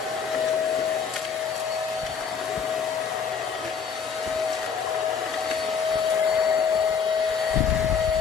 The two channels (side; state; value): right; quieter; 6.5 dB